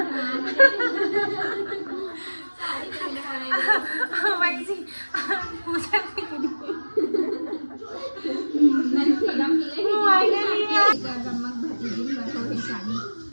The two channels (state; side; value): inverted; both; correlation -1.00